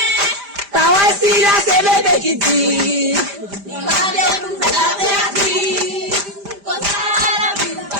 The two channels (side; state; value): left; late; 5.0 ms